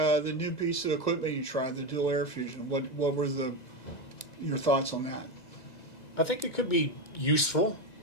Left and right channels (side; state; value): right; late; 2.0 ms